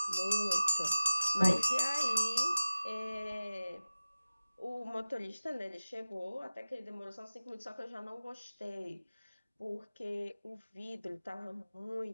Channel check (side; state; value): both; inverted; correlation -0.94